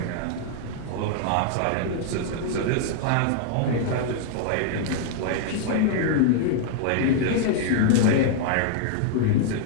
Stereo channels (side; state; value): both; different; correlation -0.01